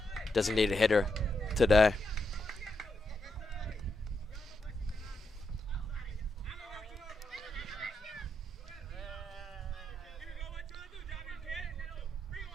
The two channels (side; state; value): both; normal; correlation 0.83